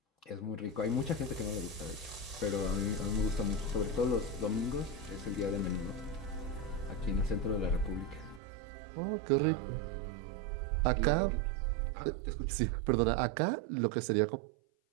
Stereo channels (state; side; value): drops out; left; at 8.4 s